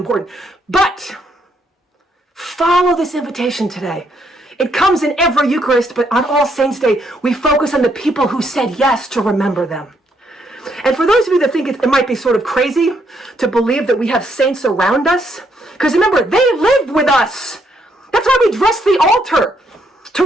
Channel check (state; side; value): normal; both; correlation 0.74